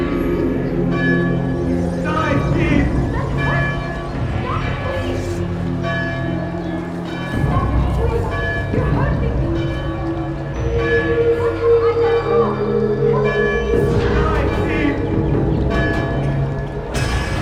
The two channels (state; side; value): identical; both; correlation 1.00